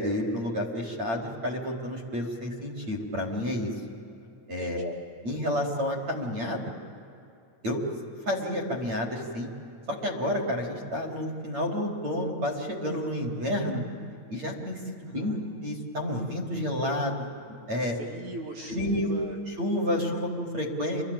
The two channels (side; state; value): left; late; 8.7 ms